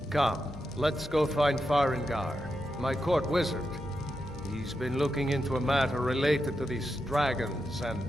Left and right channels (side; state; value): both; normal; correlation 0.87